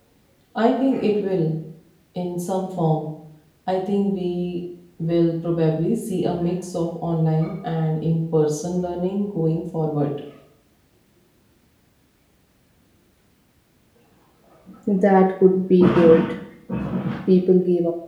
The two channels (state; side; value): identical; both; correlation 1.00